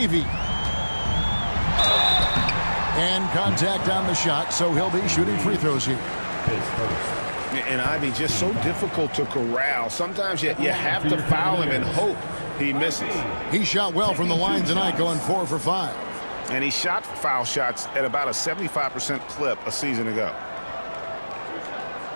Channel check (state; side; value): inverted; both; correlation -1.00